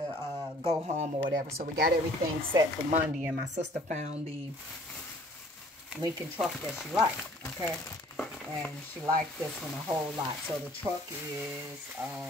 go home or whatever. So we got everything set for Monday. And my sister found the Lincoln truck that she liked. Okay. And she liked this one a whole lot. So the truck is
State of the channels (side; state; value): both; normal; correlation 0.55